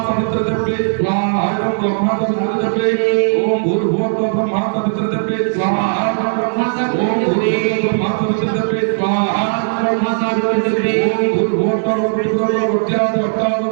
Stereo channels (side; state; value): left; silent; digital silence